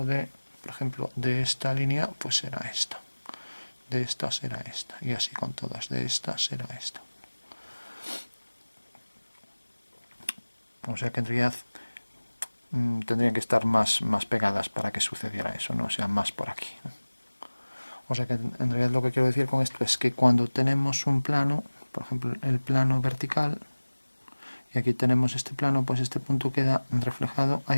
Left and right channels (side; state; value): both; inverted; correlation -1.00